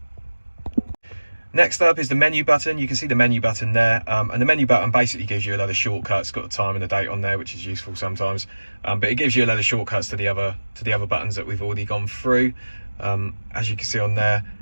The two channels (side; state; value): both; inverted; correlation -1.00